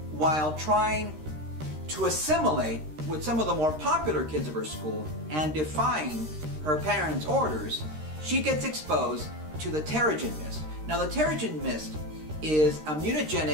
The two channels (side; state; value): left; late; 13 ms